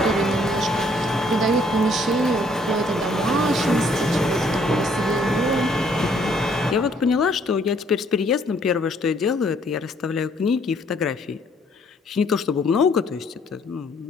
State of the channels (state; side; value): normal; both; correlation 0.64